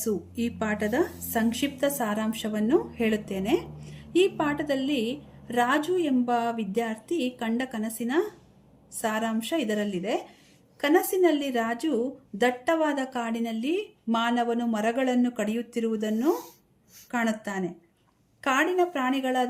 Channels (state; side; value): identical; both; correlation 1.00